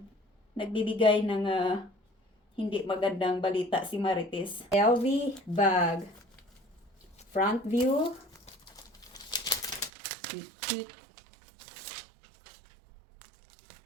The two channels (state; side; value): drops out; left; at 9.9 s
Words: Nagbibigay ng hindi magandang balita si Marites. LV bag. Front view. Cute.